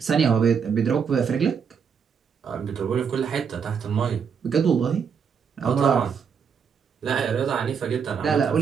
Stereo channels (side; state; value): left; quieter; 6.7 dB